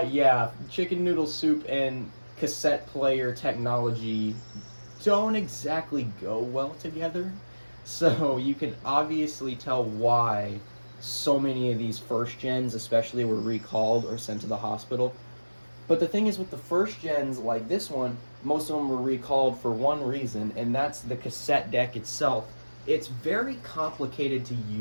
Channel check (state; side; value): inverted; both; correlation -1.00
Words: chicken noodle soup and cassette player technology don't exactly go well together. So you can obviously tell why so many of these first gens especially were recalled or sent to the hospital. But the thing is, with the first gens like this one, most of them were recalled for one reason, and that's the cassette deck itself. It's very complicated to